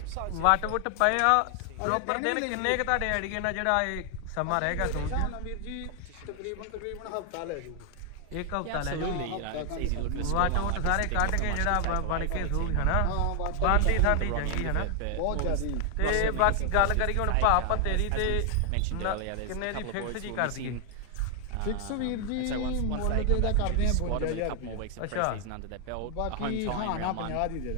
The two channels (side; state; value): both; different; correlation 0.00